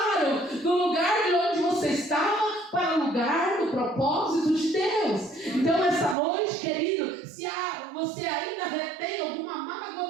do lugar de onde você estava para o lugar do propósito de Deus. Então essa noite, querido, se você ainda retém alguma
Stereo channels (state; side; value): drops out; left; at 6.2 s